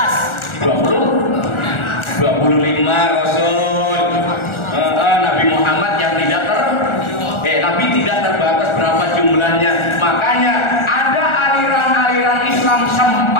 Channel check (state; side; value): late; right; 1.4 ms